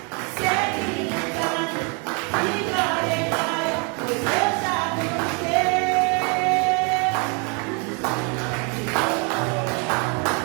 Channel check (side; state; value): left; quieter; 34.8 dB